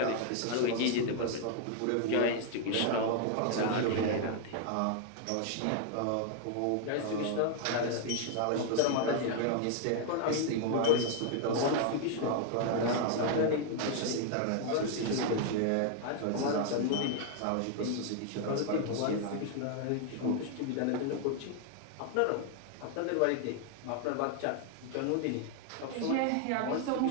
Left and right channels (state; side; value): different; both; correlation 0.00